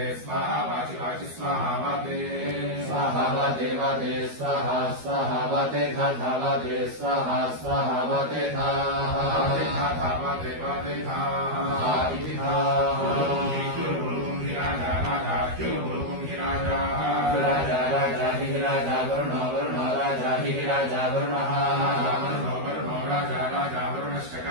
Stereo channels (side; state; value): left; late; 13 ms